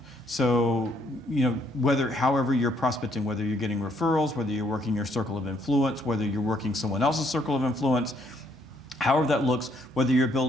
So, however you're prospecting, whether you're getting referrals, whether you're working your circle of influence, whether you're working someone else's circle of influence, however that looks, whether you're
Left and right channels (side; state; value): both; normal; correlation 0.69